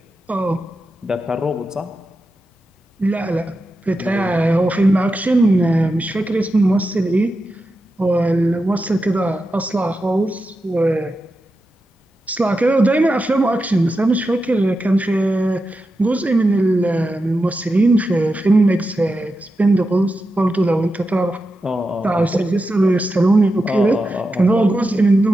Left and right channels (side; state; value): both; normal; correlation 0.90